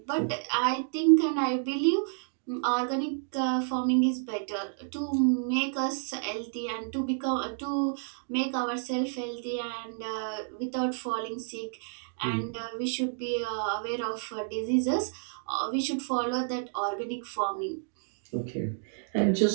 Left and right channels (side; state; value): left; silent; digital silence